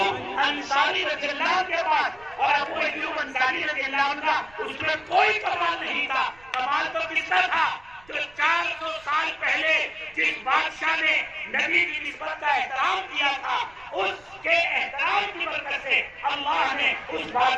अंसारी रज़ियल्लाहु के पास। और अबू अय्यूब अंसारी रज़ियल्लाहु का उसमें कोई कमाल नहीं था। कमाल तो किसका था? जो 400 साल पहले जिस बादशाह ने नबी की निस्बत का एहतराम किया था, उसके एहतराम की बरकत से अल्लाह ने उस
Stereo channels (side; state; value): right; noise; rumble, 26 dB below the sound